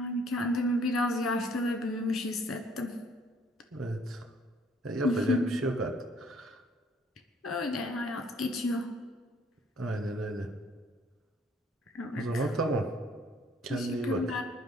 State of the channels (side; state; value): both; normal; correlation 0.61